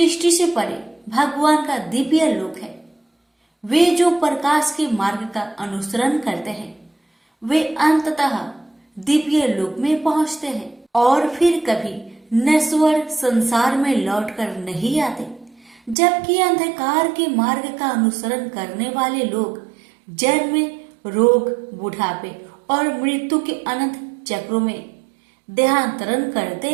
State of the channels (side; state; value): left; drops out; at 16.0 s